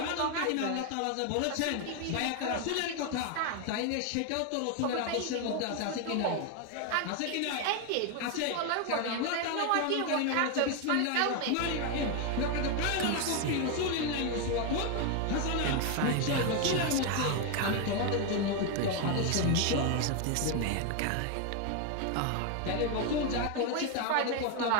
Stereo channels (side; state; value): both; different; correlation 0.01